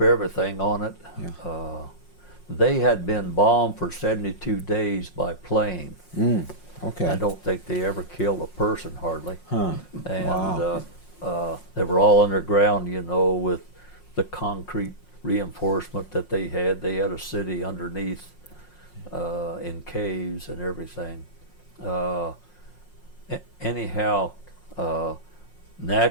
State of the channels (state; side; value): late; right; 5.5 ms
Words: everything on it. Yeah. They had been bombed for 72 days by plane. Okay. I don't think they ever killed a person hardly. Huh. And they were all underground, you know, with the concrete reinforcement that they had. They had a city underneath in caves and everything. Anyhow,